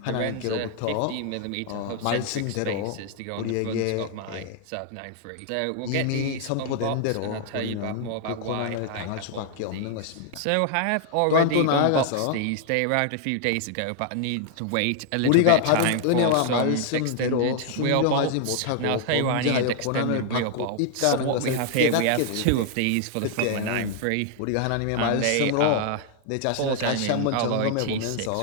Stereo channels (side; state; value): both; different; correlation 0.00